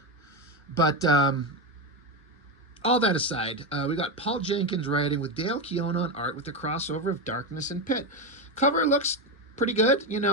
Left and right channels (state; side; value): normal; both; correlation 0.13